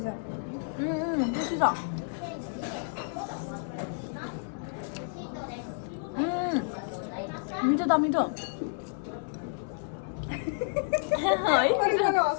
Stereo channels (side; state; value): right; silent; digital silence